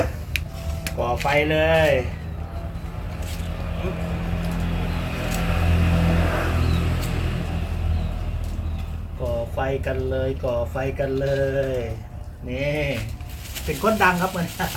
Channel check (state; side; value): identical; both; correlation 1.00